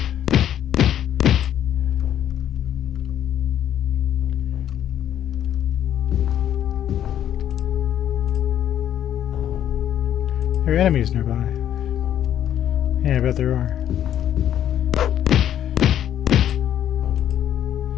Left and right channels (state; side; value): quieter; right; 10.6 dB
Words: There are enemies nearby. Yeah, I bet there are.